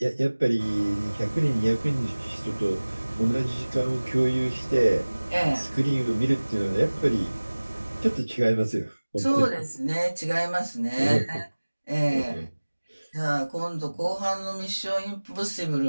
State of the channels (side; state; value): both; inverted; correlation -1.00